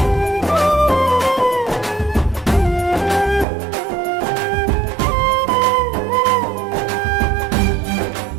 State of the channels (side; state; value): left; drops out; at 3.5 s